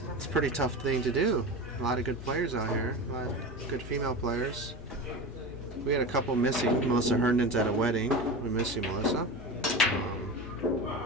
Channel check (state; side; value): normal; both; correlation 0.27